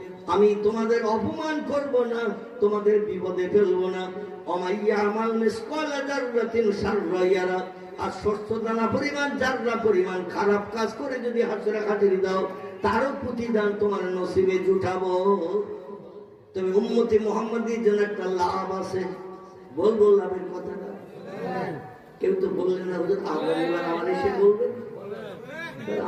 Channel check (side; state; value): both; identical; correlation 1.00